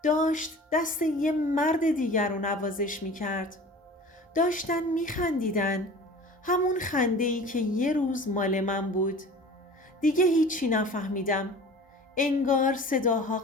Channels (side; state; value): both; normal; correlation 0.41